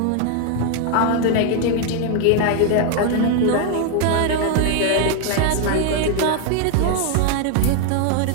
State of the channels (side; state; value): both; different; correlation 0.00